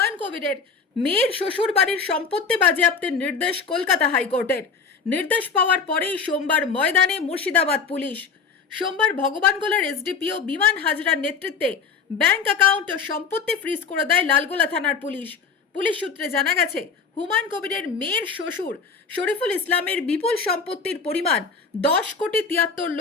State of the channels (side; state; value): right; quieter; 5.5 dB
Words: কবিরের মেয়ের শ্বশুর বাড়ির সম্পত্তি বাজেয়াপ্তের নির্দেশ কলকাতা হাইকোর্টের। নির্দেশ পাওয়ার পরেই সোমবার ময়দানে মুর্শিদাবাদ পুলিশ। সোমবার ভগবানগোলার এসডিপিও বিমান হাজরার নেতৃত্বে ব্যাংক অ্যাকাউন্ট ও সম্পত্তি ফ্রিজ করে দেয় লালগোলা থানার পুলিশ। পুলিশ সূত্রে জানা গেছে, হুমায়ুন কবিরের মেয়ের শ্বশুর শরীফুল ইসলামের বিপুল সম্পত্তির পরিমাণ